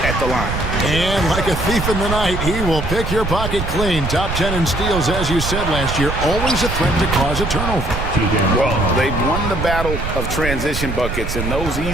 at the line. And like a thief in the night, he will pick your pocket clean. Top 10 in steals, as you said last year. Always a threat to cause a turnover. Well, they've won the battle of transition buckets, and those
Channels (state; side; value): noise; right; rumble, 4 dB below the sound